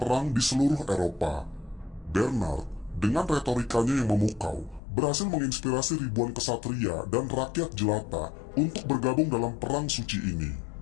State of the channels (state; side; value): drops out; right; at 4.8 s